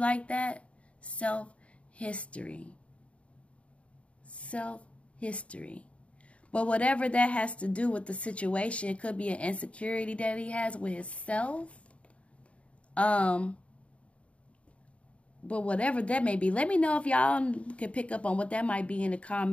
that. Self-history. Self-history. But whatever that has to do with the situation, it could be an insecurity that he has with himself. But whatever that may be, let me know if y'all can pick up on what that might be in the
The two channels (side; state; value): right; late; 0.063 ms